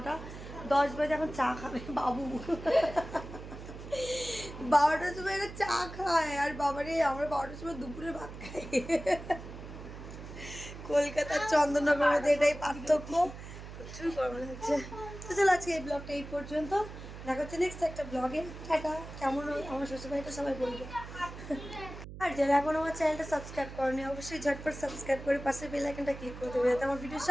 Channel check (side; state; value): right; noise; hum, 12 dB below the sound